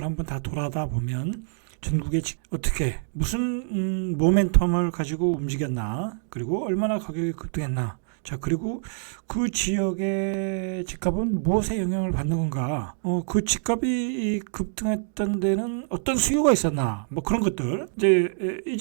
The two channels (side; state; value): left; silent; digital silence